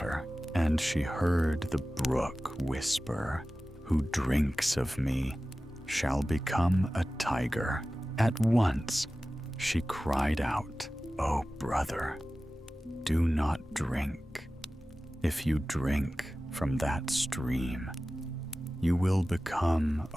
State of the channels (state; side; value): normal; both; correlation 0.96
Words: and she heard the brook whisper, "Who drinks of me shall become a tiger." At once, she cried out, "Oh, brother, do not drink. If you drink from that stream, you will become